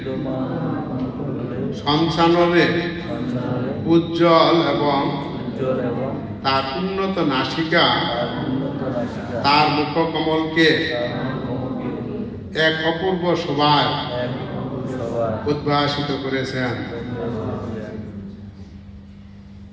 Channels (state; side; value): identical; both; correlation 1.00